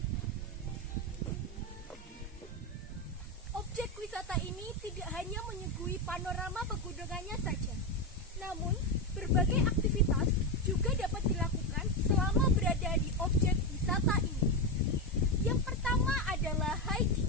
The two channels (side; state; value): both; normal; correlation 0.11